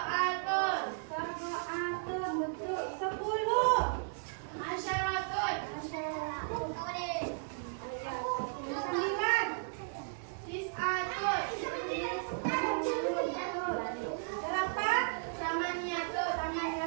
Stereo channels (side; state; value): left; silent; 54 dB below the other